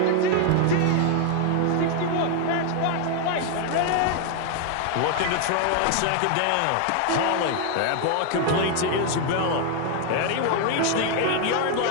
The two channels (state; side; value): different; both; correlation 0.00